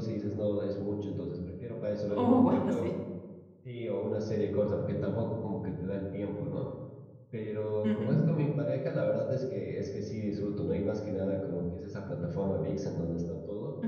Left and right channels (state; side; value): identical; both; correlation 1.00